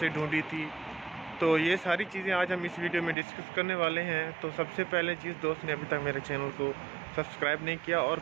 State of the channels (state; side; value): drops out; left; at 3.2 s